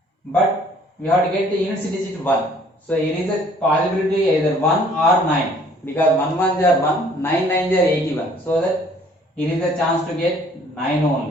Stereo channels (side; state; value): both; normal; correlation 0.57